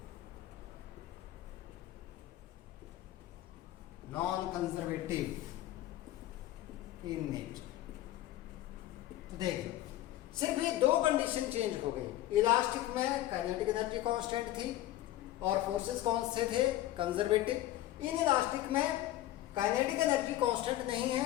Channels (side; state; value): right; quieter; 14.5 dB